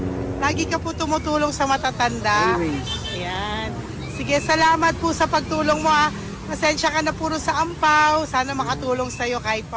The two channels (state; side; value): identical; both; correlation 1.00